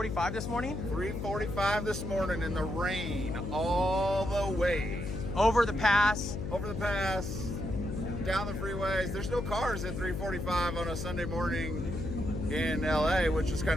this morning? 3:45 this morning in the rain, all the way. Over the pass. Over the pass, down the freeways. There's no cars at 3:45 on a Sunday morning in LA, which is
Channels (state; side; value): noise; left; hum, 4 dB below the sound